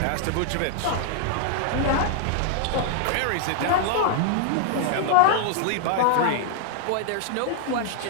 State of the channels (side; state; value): both; different; correlation 0.00